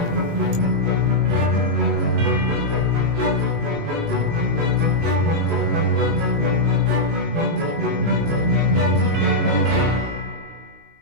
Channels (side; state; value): left; late; 19 ms